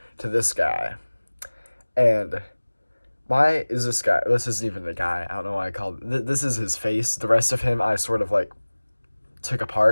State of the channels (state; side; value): inverted; both; correlation -1.00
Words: to this guy. And why is this guy? This isn't even the guy. I don't know why I called this is his face. The rest of him, I sort of like took